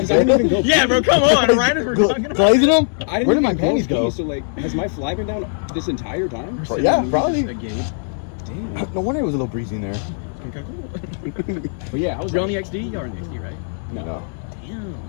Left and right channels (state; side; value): silent; right; digital silence